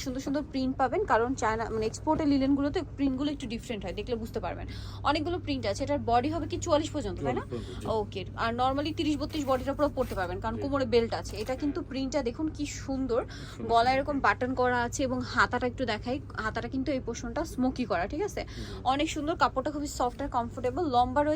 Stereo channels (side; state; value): both; identical; correlation 1.00